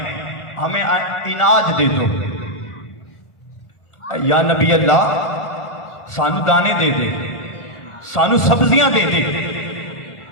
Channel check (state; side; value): late; right; 1.4 ms